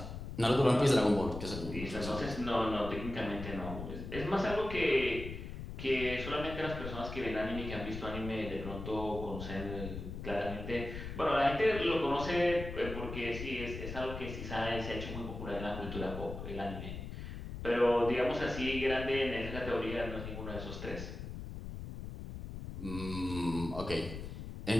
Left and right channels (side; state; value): left; noise; rumble, 8 dB below the sound